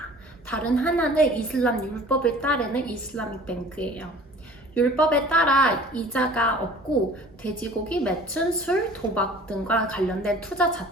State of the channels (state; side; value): normal; both; correlation 0.47